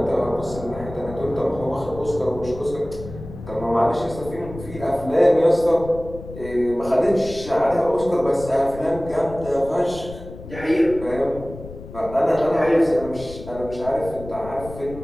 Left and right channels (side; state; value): left; noise; rumble, 13 dB below the sound